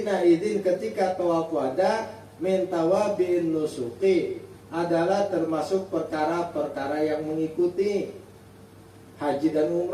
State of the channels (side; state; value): both; identical; correlation 1.00